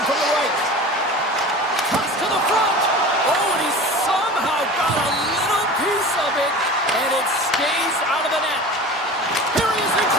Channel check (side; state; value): both; normal; correlation 0.36